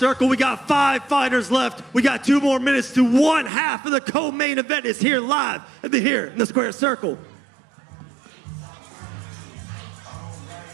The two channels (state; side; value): drops out; left; at 3.5 s